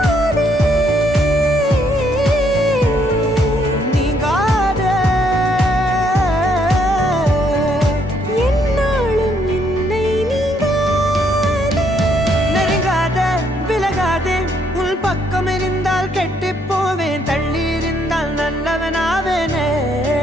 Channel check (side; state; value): both; normal; correlation 0.71